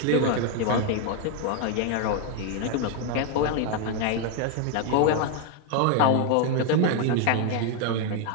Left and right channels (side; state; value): both; different; correlation 0.01